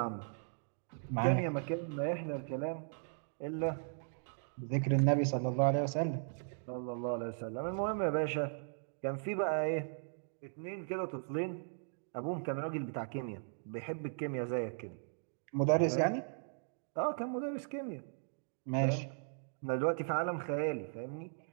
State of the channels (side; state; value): left; silent; digital silence